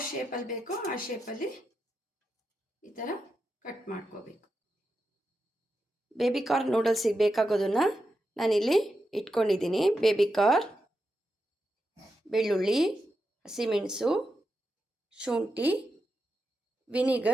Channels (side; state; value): both; normal; correlation 0.87